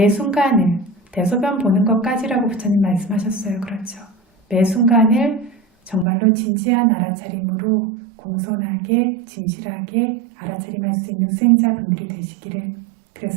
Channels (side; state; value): left; drops out; at 6.1 s